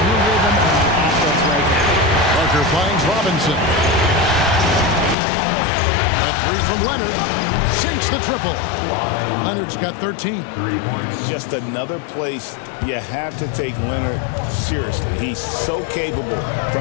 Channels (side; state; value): right; drops out; at 5.2 s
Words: the rhythm on offense right now. Parker finds Robinson. A 3 from Leonard. Sinks the triple. Leonard's got 13. 3 points. Just another place you have to take Leonard seriously. He's so capable